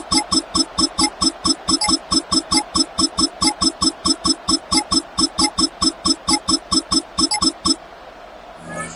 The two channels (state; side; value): identical; both; correlation 1.00